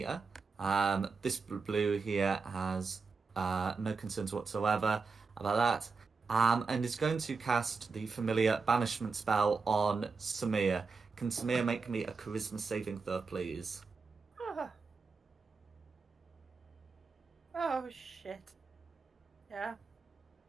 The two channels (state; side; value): quieter; left; 4.7 dB